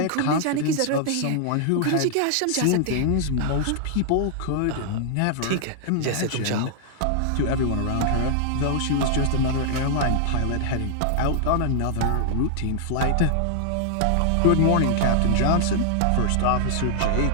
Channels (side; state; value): both; different; correlation -0.01